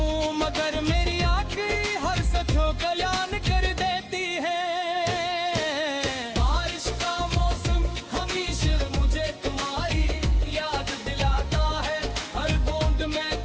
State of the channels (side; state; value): both; identical; correlation 1.00